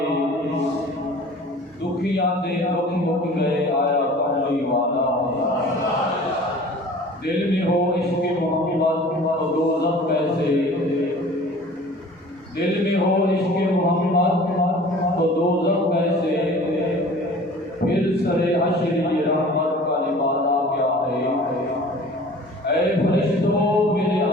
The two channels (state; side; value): normal; both; correlation 0.45